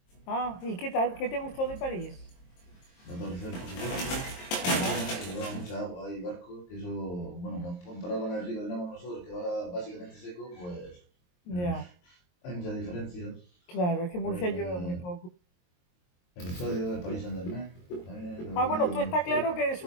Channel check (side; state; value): right; late; 23 ms